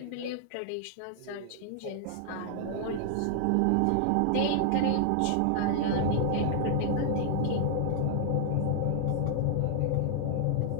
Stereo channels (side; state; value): both; different; correlation -0.01